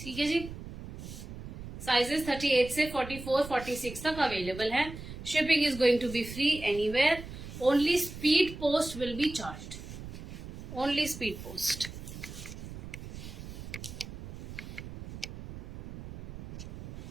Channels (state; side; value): noise; right; rumble, 11 dB below the sound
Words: है जी। साइजेस 38 से 44, 46 तक अवेलेबल है। Shipping is going to be free anywhere. Only speed post will be charged. Only speed post.